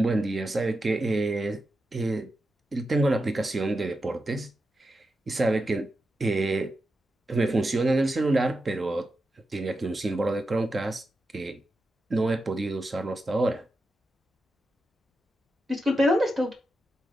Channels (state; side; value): normal; both; correlation 0.89